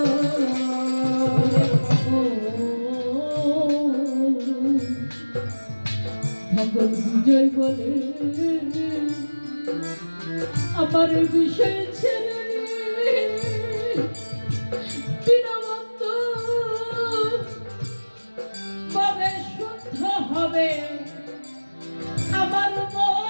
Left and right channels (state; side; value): inverted; both; correlation -1.00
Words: ভগবান বিজয় বলে আমার বিষয় ছেলে বিনবন্ত কবে শুদ্ধ হবে